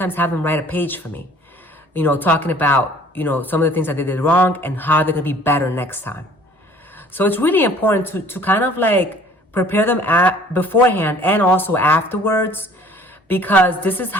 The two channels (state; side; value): normal; both; correlation 0.53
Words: have them write a page for me, talking about, some of the things that they did wrong and how they're going to be better next time. So it's really important to kind of like prepare them beforehand and also afterwards, because this is